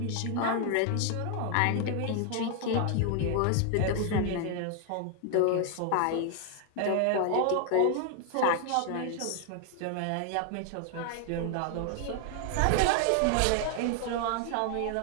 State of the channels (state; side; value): different; both; correlation 0.00